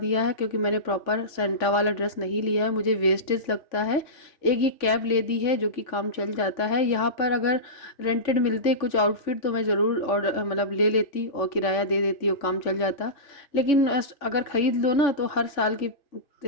है, क्योंकि मैंने प्रॉपर सेंटा वाला ड्रेस नहीं लिया है, मुझे वेस्टेज लगता है। एक ये कैप ले दी है जो कि काम चल जाता है। यहाँ पर अगर रेंटेड मिलते कुछ आउटफिट तो मैं ज़रूर और मतलब ले लेती और किराया दे देती और काम चल जाता। लेकिन अगर ख़रीद लो ना तो हर साल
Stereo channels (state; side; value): late; right; 3.5 ms